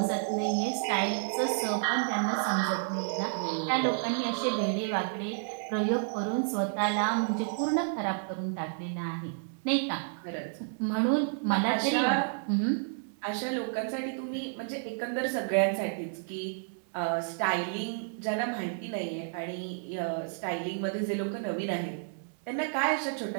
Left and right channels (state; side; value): silent; left; digital silence